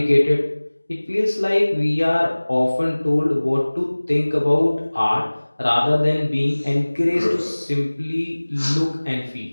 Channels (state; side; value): inverted; both; correlation -1.00